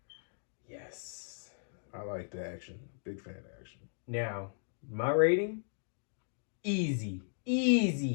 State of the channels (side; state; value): right; silent; digital silence